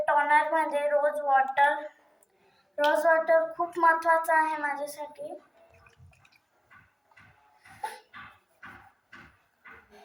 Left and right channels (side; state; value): both; identical; correlation 1.00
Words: टोनरमध्ये रोज वॉटर. रोज वॉटर खूप महत्त्वाचं आहे माझ्यासाठी.